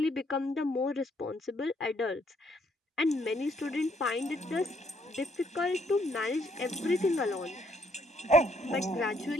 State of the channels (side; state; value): both; normal; correlation 0.70